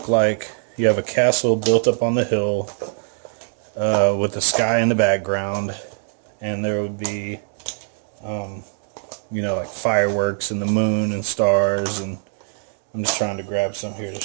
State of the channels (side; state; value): left; silent; digital silence